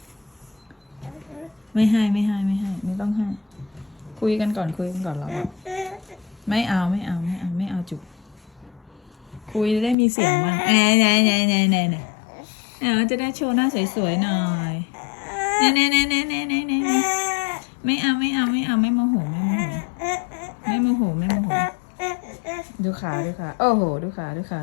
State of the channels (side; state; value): right; drops out; at 10.0 s